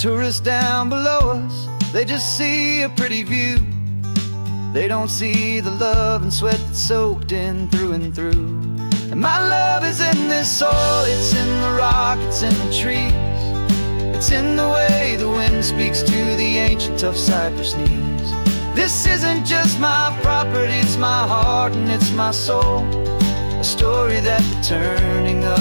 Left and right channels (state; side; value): inverted; both; correlation -1.00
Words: down below us, they just see a pretty view. They don't see the love and sweat that's soaked in through and through. And my love is in this soil, it's in the rock, it's in the trees. It's in the way the wind speaks to the ancient tough cypress knees. This isn't just my property, it's my heart and it's my soul. A story that the turning